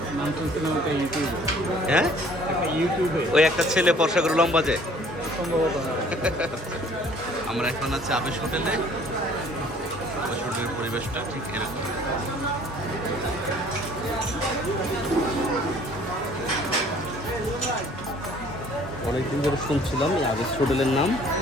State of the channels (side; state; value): both; normal; correlation 0.55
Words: নাম তো একটা ইউটিউবে, হ্যাঁ, একটা ইউটিউবে ওই একটা ছেলে ফর্সা করে লম্বা যে। সম্ভবত। আমরা এখন আছি আবেশ হোটেলে। আবেশ হোটেলের পরিবেশটা ঠিক এরকম। অনেকদিন ধরে শুনছিলাম এই আবেশ হোটেলের নাম,